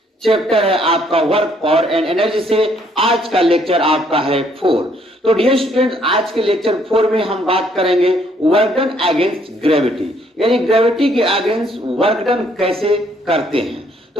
Chapter है आपका वर्क पावर एंड एनर्जी से। आज का लेक्चर आपका है 4। तो डियर स्टूडेंट्स, आज के लेक्चर 4 में हम बात करेंगे वर्क डन अगेंस्ट ग्रेविटी, यानी ग्रेविटी के अगेंस्ट वर्क डन कैसे करते हैं।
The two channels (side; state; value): both; normal; correlation 0.67